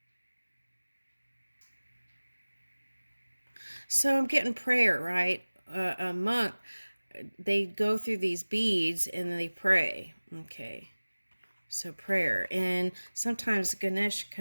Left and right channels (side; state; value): both; inverted; correlation -1.00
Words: So I'm getting prayer, right? A monk, they go through these beads and they pray. Okay. So prayer. And sometimes Ganesh